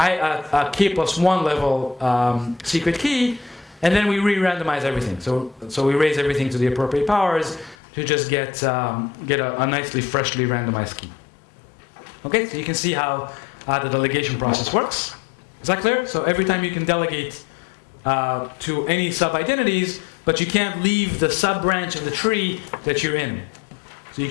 K plus 1 level secret key. And then we re-randomize everything. So we raise everything to the appropriate powers to just get a nicely, freshly randomized key. Okay, so you can see how the delegation process works. Is that clear? So every time you can delegate to any sub-identities, but you can't leave the sub-branch of the tree that you're in. So you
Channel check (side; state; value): right; drops out; at 7.8 s